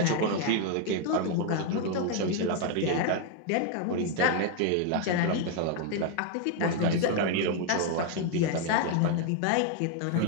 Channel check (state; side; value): different; both; correlation 0.00